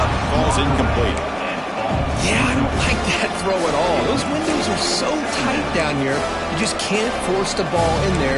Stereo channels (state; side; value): identical; both; correlation 1.00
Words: falls incomplete. Yeah, I don't like that throw at all. Those windows are so tight down here, you just can't force the ball in there